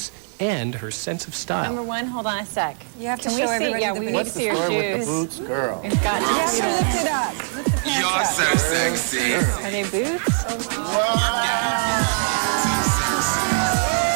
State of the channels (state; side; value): silent; left; 64 dB below the other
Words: and her sense of style. Number one, hold on a sec. You have to Can show we see? everybody Yeah, the we boots. need to see your What's the story with shoes. the boots, girl? We've got to You have see to them. lift it up. Lift the pants up. Are they boots?